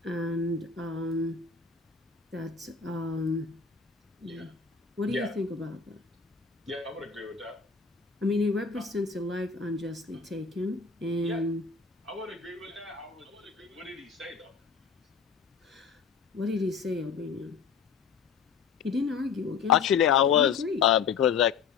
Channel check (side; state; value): right; quieter; 6.1 dB